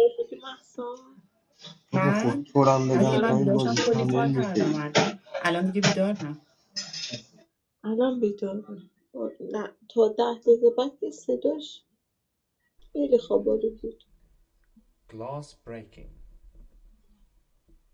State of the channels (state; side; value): identical; both; correlation 1.00